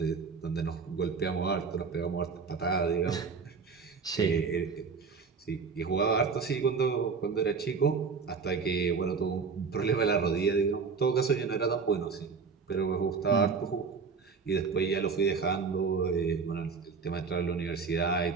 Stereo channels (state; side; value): quieter; left; 5.3 dB